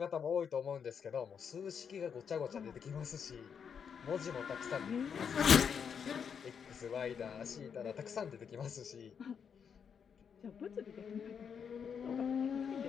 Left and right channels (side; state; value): right; quieter; 7.0 dB